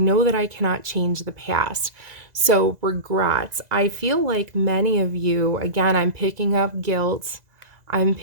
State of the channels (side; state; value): left; late; 2.0 ms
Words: that I cannot change the past. So regrets. I feel like many of you, again, I'm picking up guilt. I'm